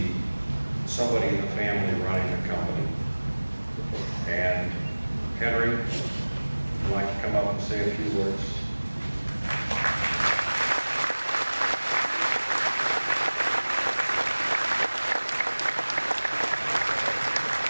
somebody in the family running the company. And Henry, would you like to come up and say a few words?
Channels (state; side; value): inverted; both; correlation -1.00